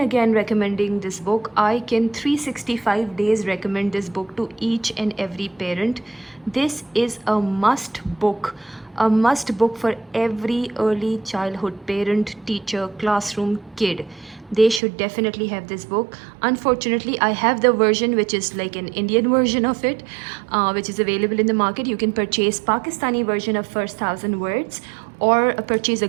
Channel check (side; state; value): left; drops out; at 14.8 s